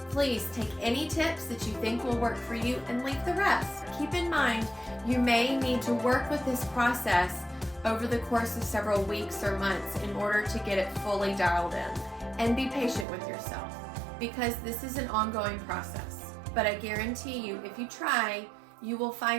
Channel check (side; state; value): left; drops out; at 13.1 s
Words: Please take any tips that you think will work for you and leave the rest. Keep in mind, you may need to work with this process over the course of several weeks or months in order to get it fully dialed in. And be patient with yourself because this is an ongoing process. But I guarantee you, if you try, you will